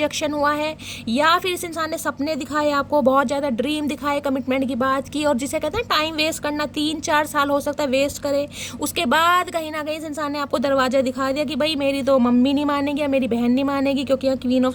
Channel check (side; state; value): both; identical; correlation 1.00